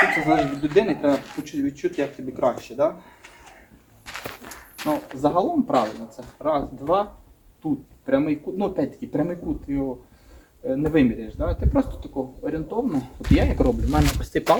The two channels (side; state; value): both; identical; correlation 1.00